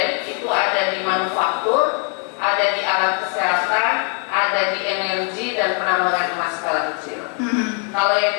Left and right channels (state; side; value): quieter; right; 39.8 dB